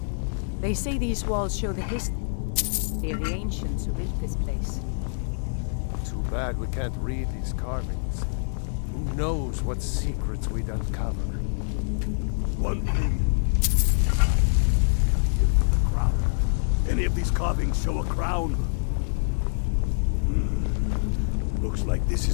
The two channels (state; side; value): silent; right; digital silence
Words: They say these walls show the history of the ancients who built this place. Too bad we can't read these carvings. Who knows what secrets we'd uncover? One thing. The crown. Any of these carvings show a crown? Looks like this